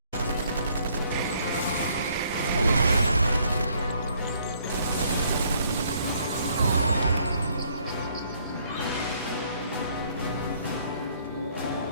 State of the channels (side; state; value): both; inverted; correlation -0.65